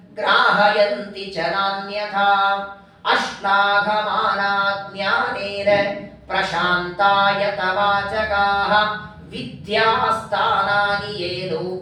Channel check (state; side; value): identical; both; correlation 1.00